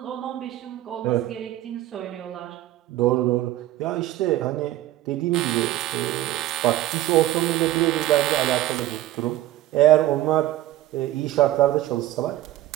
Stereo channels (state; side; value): quieter; left; 14.8 dB